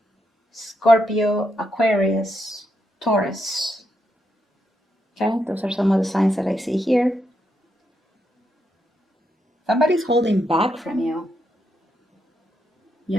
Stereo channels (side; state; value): both; normal; correlation 0.81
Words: Scorpio, Aquarius, Taurus. Okay, those are some of the signs that I see here. Somebody's holding back from you.